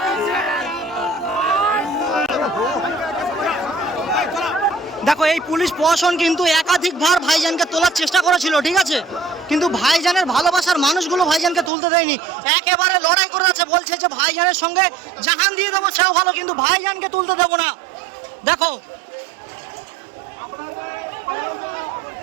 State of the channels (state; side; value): drops out; left; at 11.7 s